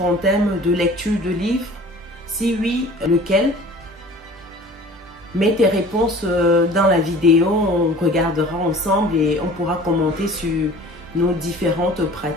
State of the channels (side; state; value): both; normal; correlation 0.45